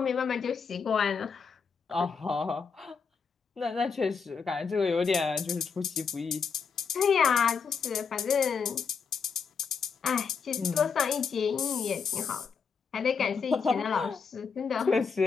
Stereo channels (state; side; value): quieter; right; 5.8 dB